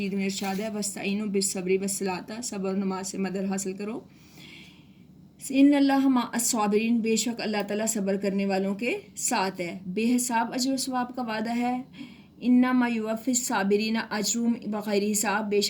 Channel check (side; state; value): both; identical; correlation 1.00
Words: میں ارشاد ہے وَاسْتَعِینُوا بِالصَّبْرِ وَالصَّلَاةِ، صبر و نماز سے مدد حاصل کرو. ان اللہ مع الصابرین، بے شک اللہ تعالیٰ صبر کرنے والوں کے ساتھ ہے. بے حساب اجر و ثواب کا وعدہ ہے. انما یوفی الصابرین اجرہم بغیر حساب، بے